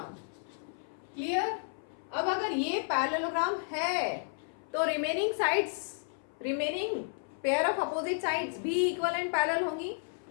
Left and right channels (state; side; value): silent; right; 56 dB below the other